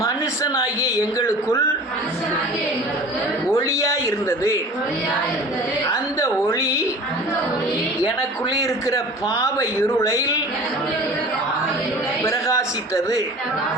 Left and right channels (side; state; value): both; normal; correlation 0.41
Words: மனுஷனாகிய எங்களுக்குள் ஒளியாய் இருந்தது. அந்த ஒளி எனக்குள்ளே இருக்கிற பாவ இருளை பிரகாசித்தது.